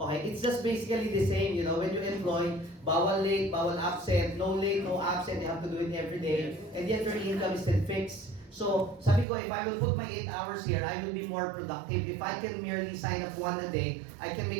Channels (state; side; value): drops out; left; at 9.2 s